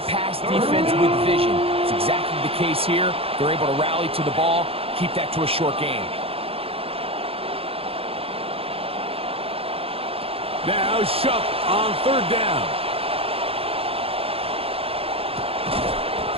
pass defense with vision. It's exactly the case here. They're able to rally to the ball, keep that to a short game. Now Shuck on third down.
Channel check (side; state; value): left; late; 0.28 ms